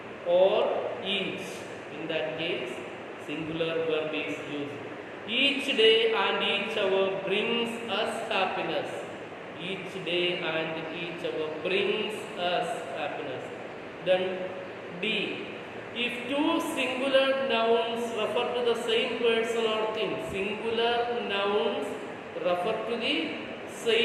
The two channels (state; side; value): identical; both; correlation 1.00